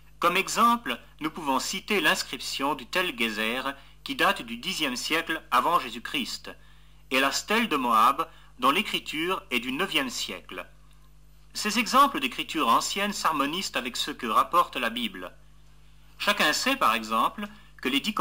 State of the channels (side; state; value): both; identical; correlation 1.00